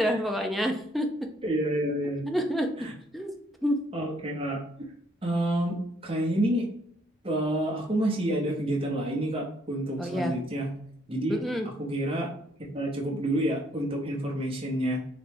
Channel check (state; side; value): normal; both; correlation 0.68